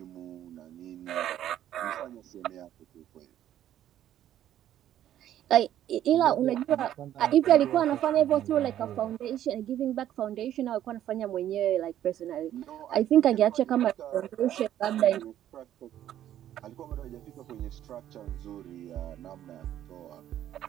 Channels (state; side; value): quieter; left; 11.6 dB